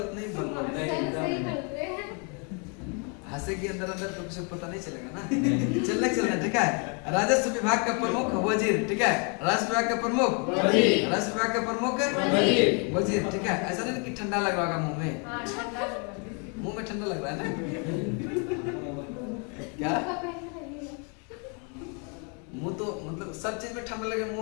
नहीं बोल रहे, हंसे के अंदर अंदर तो कुछ पता नहीं चलेगा ना। चलना ठीक है। राजस्व विभाग का प्रमुख वजीर, ठीक है। राजस्व विभाग का प्रमुख वजीर, राजस्व विभाग का प्रमुख वजीर, ठीक है। ऐसा नहीं कि ठंडा लग रहा मुंह में, मुंह में ठंडा लग रहा है ना क्या, मुंह तो मतलब सब चीज में ठंडा लगे,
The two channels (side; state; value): right; quieter; 36.6 dB